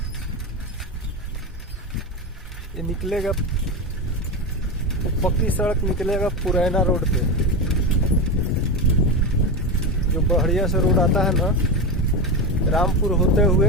ये निकलेगा, पक्की सड़क निकलेगा पुरैना रोड पे। जो बढ़िया से रोड आता है ना, रामपुर होते हुए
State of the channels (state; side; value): normal; both; correlation 0.17